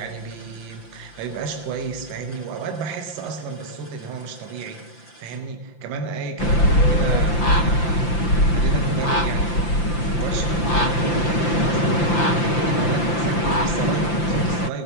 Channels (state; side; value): late; right; 5.9 ms